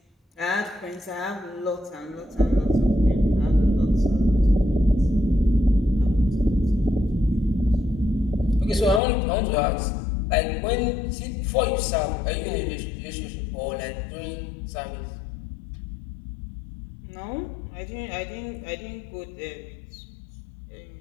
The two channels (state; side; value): drops out; right; at 9.0 s